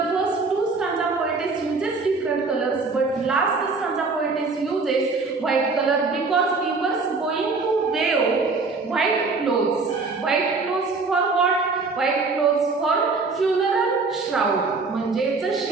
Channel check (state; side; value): quieter; left; 4.1 dB